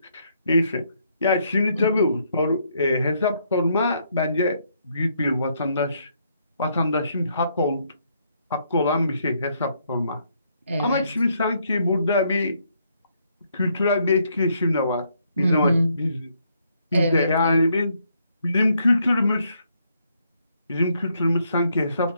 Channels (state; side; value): inverted; both; correlation -0.73